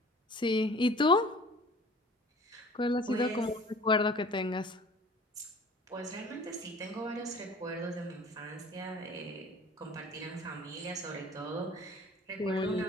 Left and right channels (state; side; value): normal; both; correlation 0.47